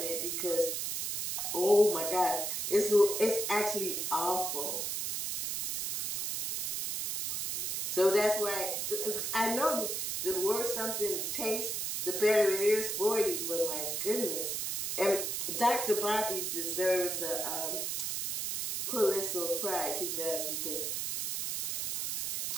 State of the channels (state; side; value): noise; right; hiss, 1 dB below the sound